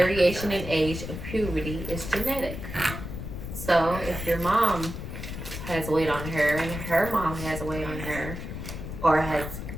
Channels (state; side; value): noise; left; rumble, 8 dB below the sound